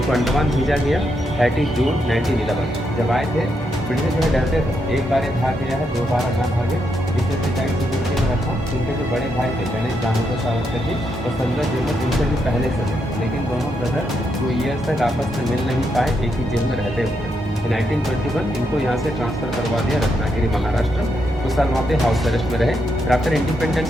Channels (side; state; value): both; normal; correlation 0.80